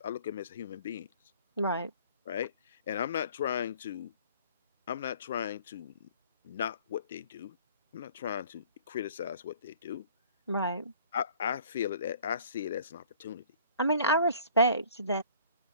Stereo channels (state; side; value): inverted; both; correlation -0.51